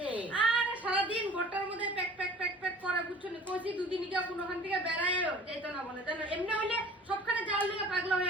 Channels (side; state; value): both; normal; correlation 0.47